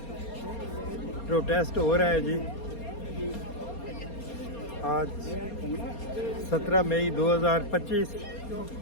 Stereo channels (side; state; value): right; late; 4.3 ms